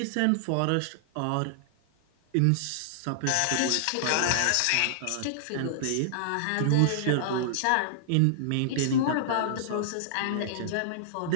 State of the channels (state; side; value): different; both; correlation -0.01